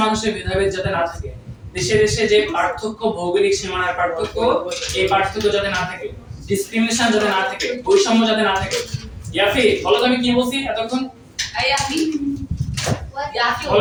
মানুষে ভেদাভেদ যাতে না থাকে, দেশে দেশে যে পার্থক্য, ভৌগোলিক সীমানার পার্থক্য, এই পার্থক্য যাতে না থাকে, ডিসক্রিমিনেশন যাতে না থাকে, বৈষম্য যাতে না থাকে। ইয়াফি বলো তো আমি কি বলছি এতক্ষণ? এই আপনি বলো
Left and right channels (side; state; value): both; identical; correlation 1.00